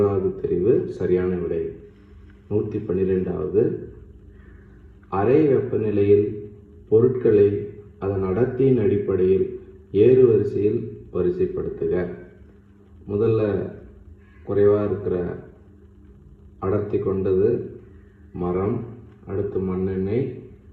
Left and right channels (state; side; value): identical; both; correlation 1.00